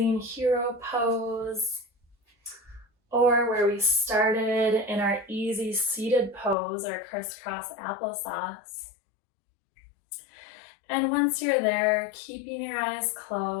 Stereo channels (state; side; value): drops out; right; at 6.6 s